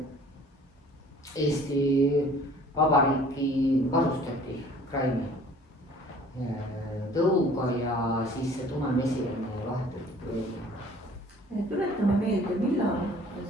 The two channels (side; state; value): both; normal; correlation 0.51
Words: Eesti Vabariiki varustati kraini tõuga ja siis see tumemesilane vahetati. Tuletame meelde, millal